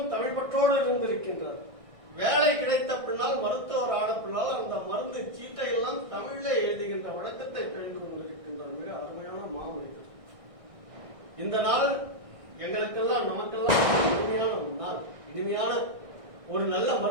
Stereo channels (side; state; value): left; late; 1.6 ms